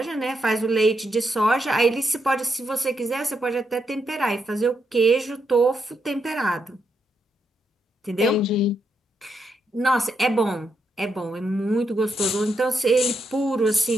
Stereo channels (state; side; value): normal; both; correlation 0.80